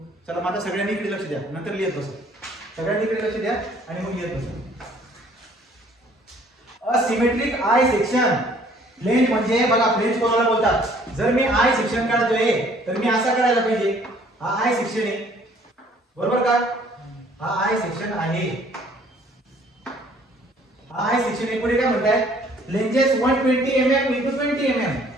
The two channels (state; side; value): normal; both; correlation 0.58